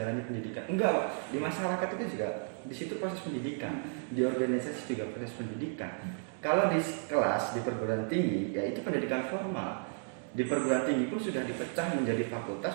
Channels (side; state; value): left; silent; 56 dB below the other